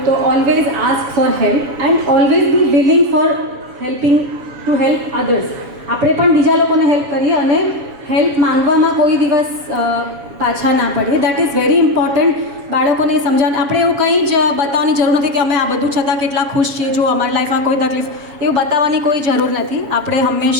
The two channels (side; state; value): left; late; 7.1 ms